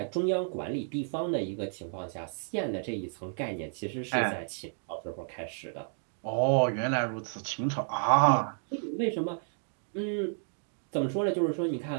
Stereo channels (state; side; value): silent; left; digital silence